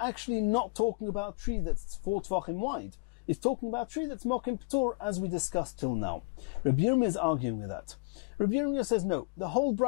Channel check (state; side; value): quieter; right; 33.4 dB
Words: not talking about tree that's 4 tvachim wide. It's talking about tree that's mokim p'tur, as we discussed till now. Rabbi Yirmiyah is arguing with that. Rabbi Yirmiyah says no, the whole